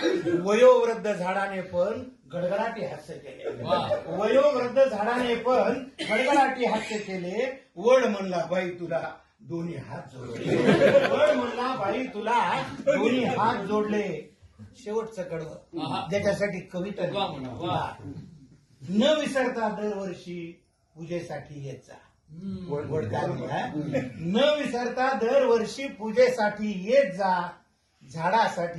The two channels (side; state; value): both; identical; correlation 1.00